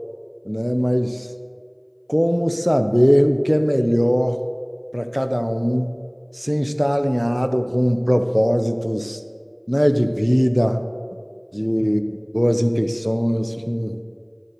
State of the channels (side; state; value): both; identical; correlation 1.00